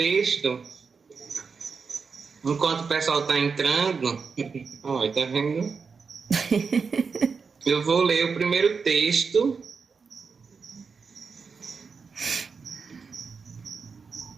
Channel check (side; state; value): left; quieter; 5.3 dB